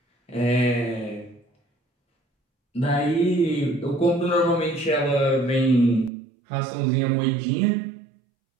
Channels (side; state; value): left; drops out; at 6.1 s